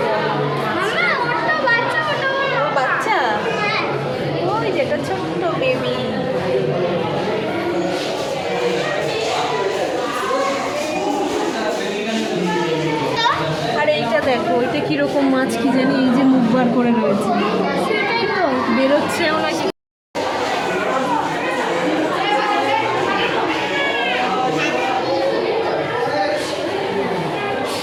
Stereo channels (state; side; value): identical; both; correlation 1.00